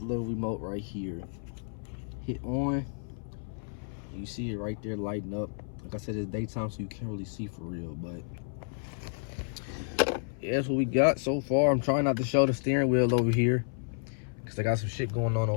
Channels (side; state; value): right; silent; 57 dB below the other